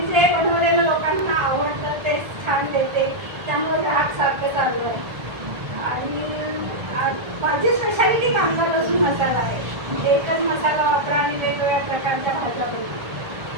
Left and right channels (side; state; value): left; late; 1.4 ms